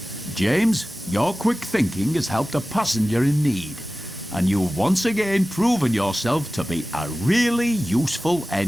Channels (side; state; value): both; normal; correlation 0.96